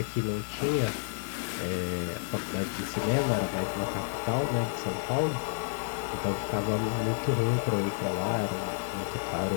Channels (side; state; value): right; silent; digital silence